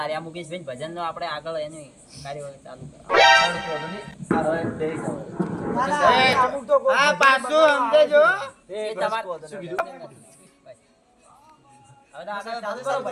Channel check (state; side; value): identical; both; correlation 1.00